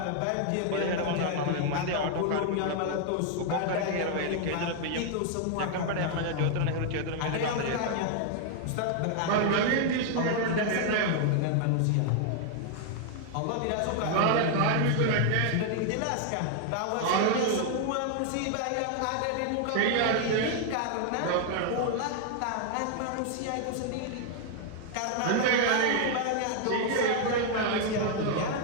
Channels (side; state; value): both; different; correlation 0.00